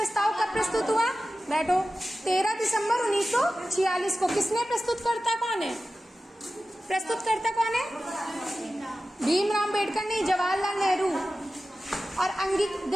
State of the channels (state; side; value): normal; both; correlation 0.95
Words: कब प्रस्तुत हुआ, बैठो, 13 दिसंबर 1946 को। किसने प्रस्तुत करता, कौन है प्रस्तुतकर्ता, कौन है? भीमराव अम्बेडकर नहीं, जवाहरलाल नेहरू। और